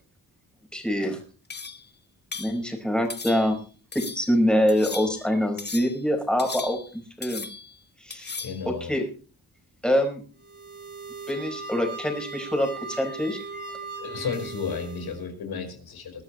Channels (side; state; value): both; normal; correlation 0.75